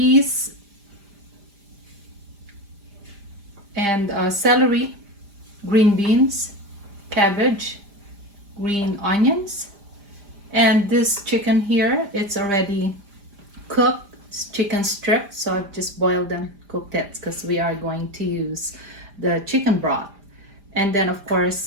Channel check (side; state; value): left; late; 5.0 ms